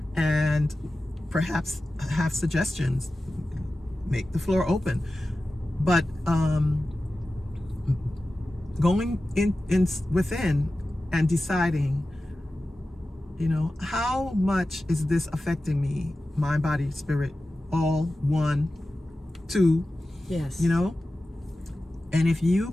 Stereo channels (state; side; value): normal; both; correlation 0.94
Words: and perhaps have suggestions. Make the floor open. But going in within and deciding, how much is this affecting me, mind, body, spirit, all, 1, 2. Yes. And if you